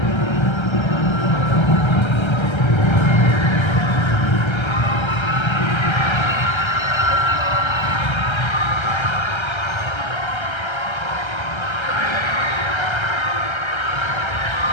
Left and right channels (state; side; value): late; right; 1.3 ms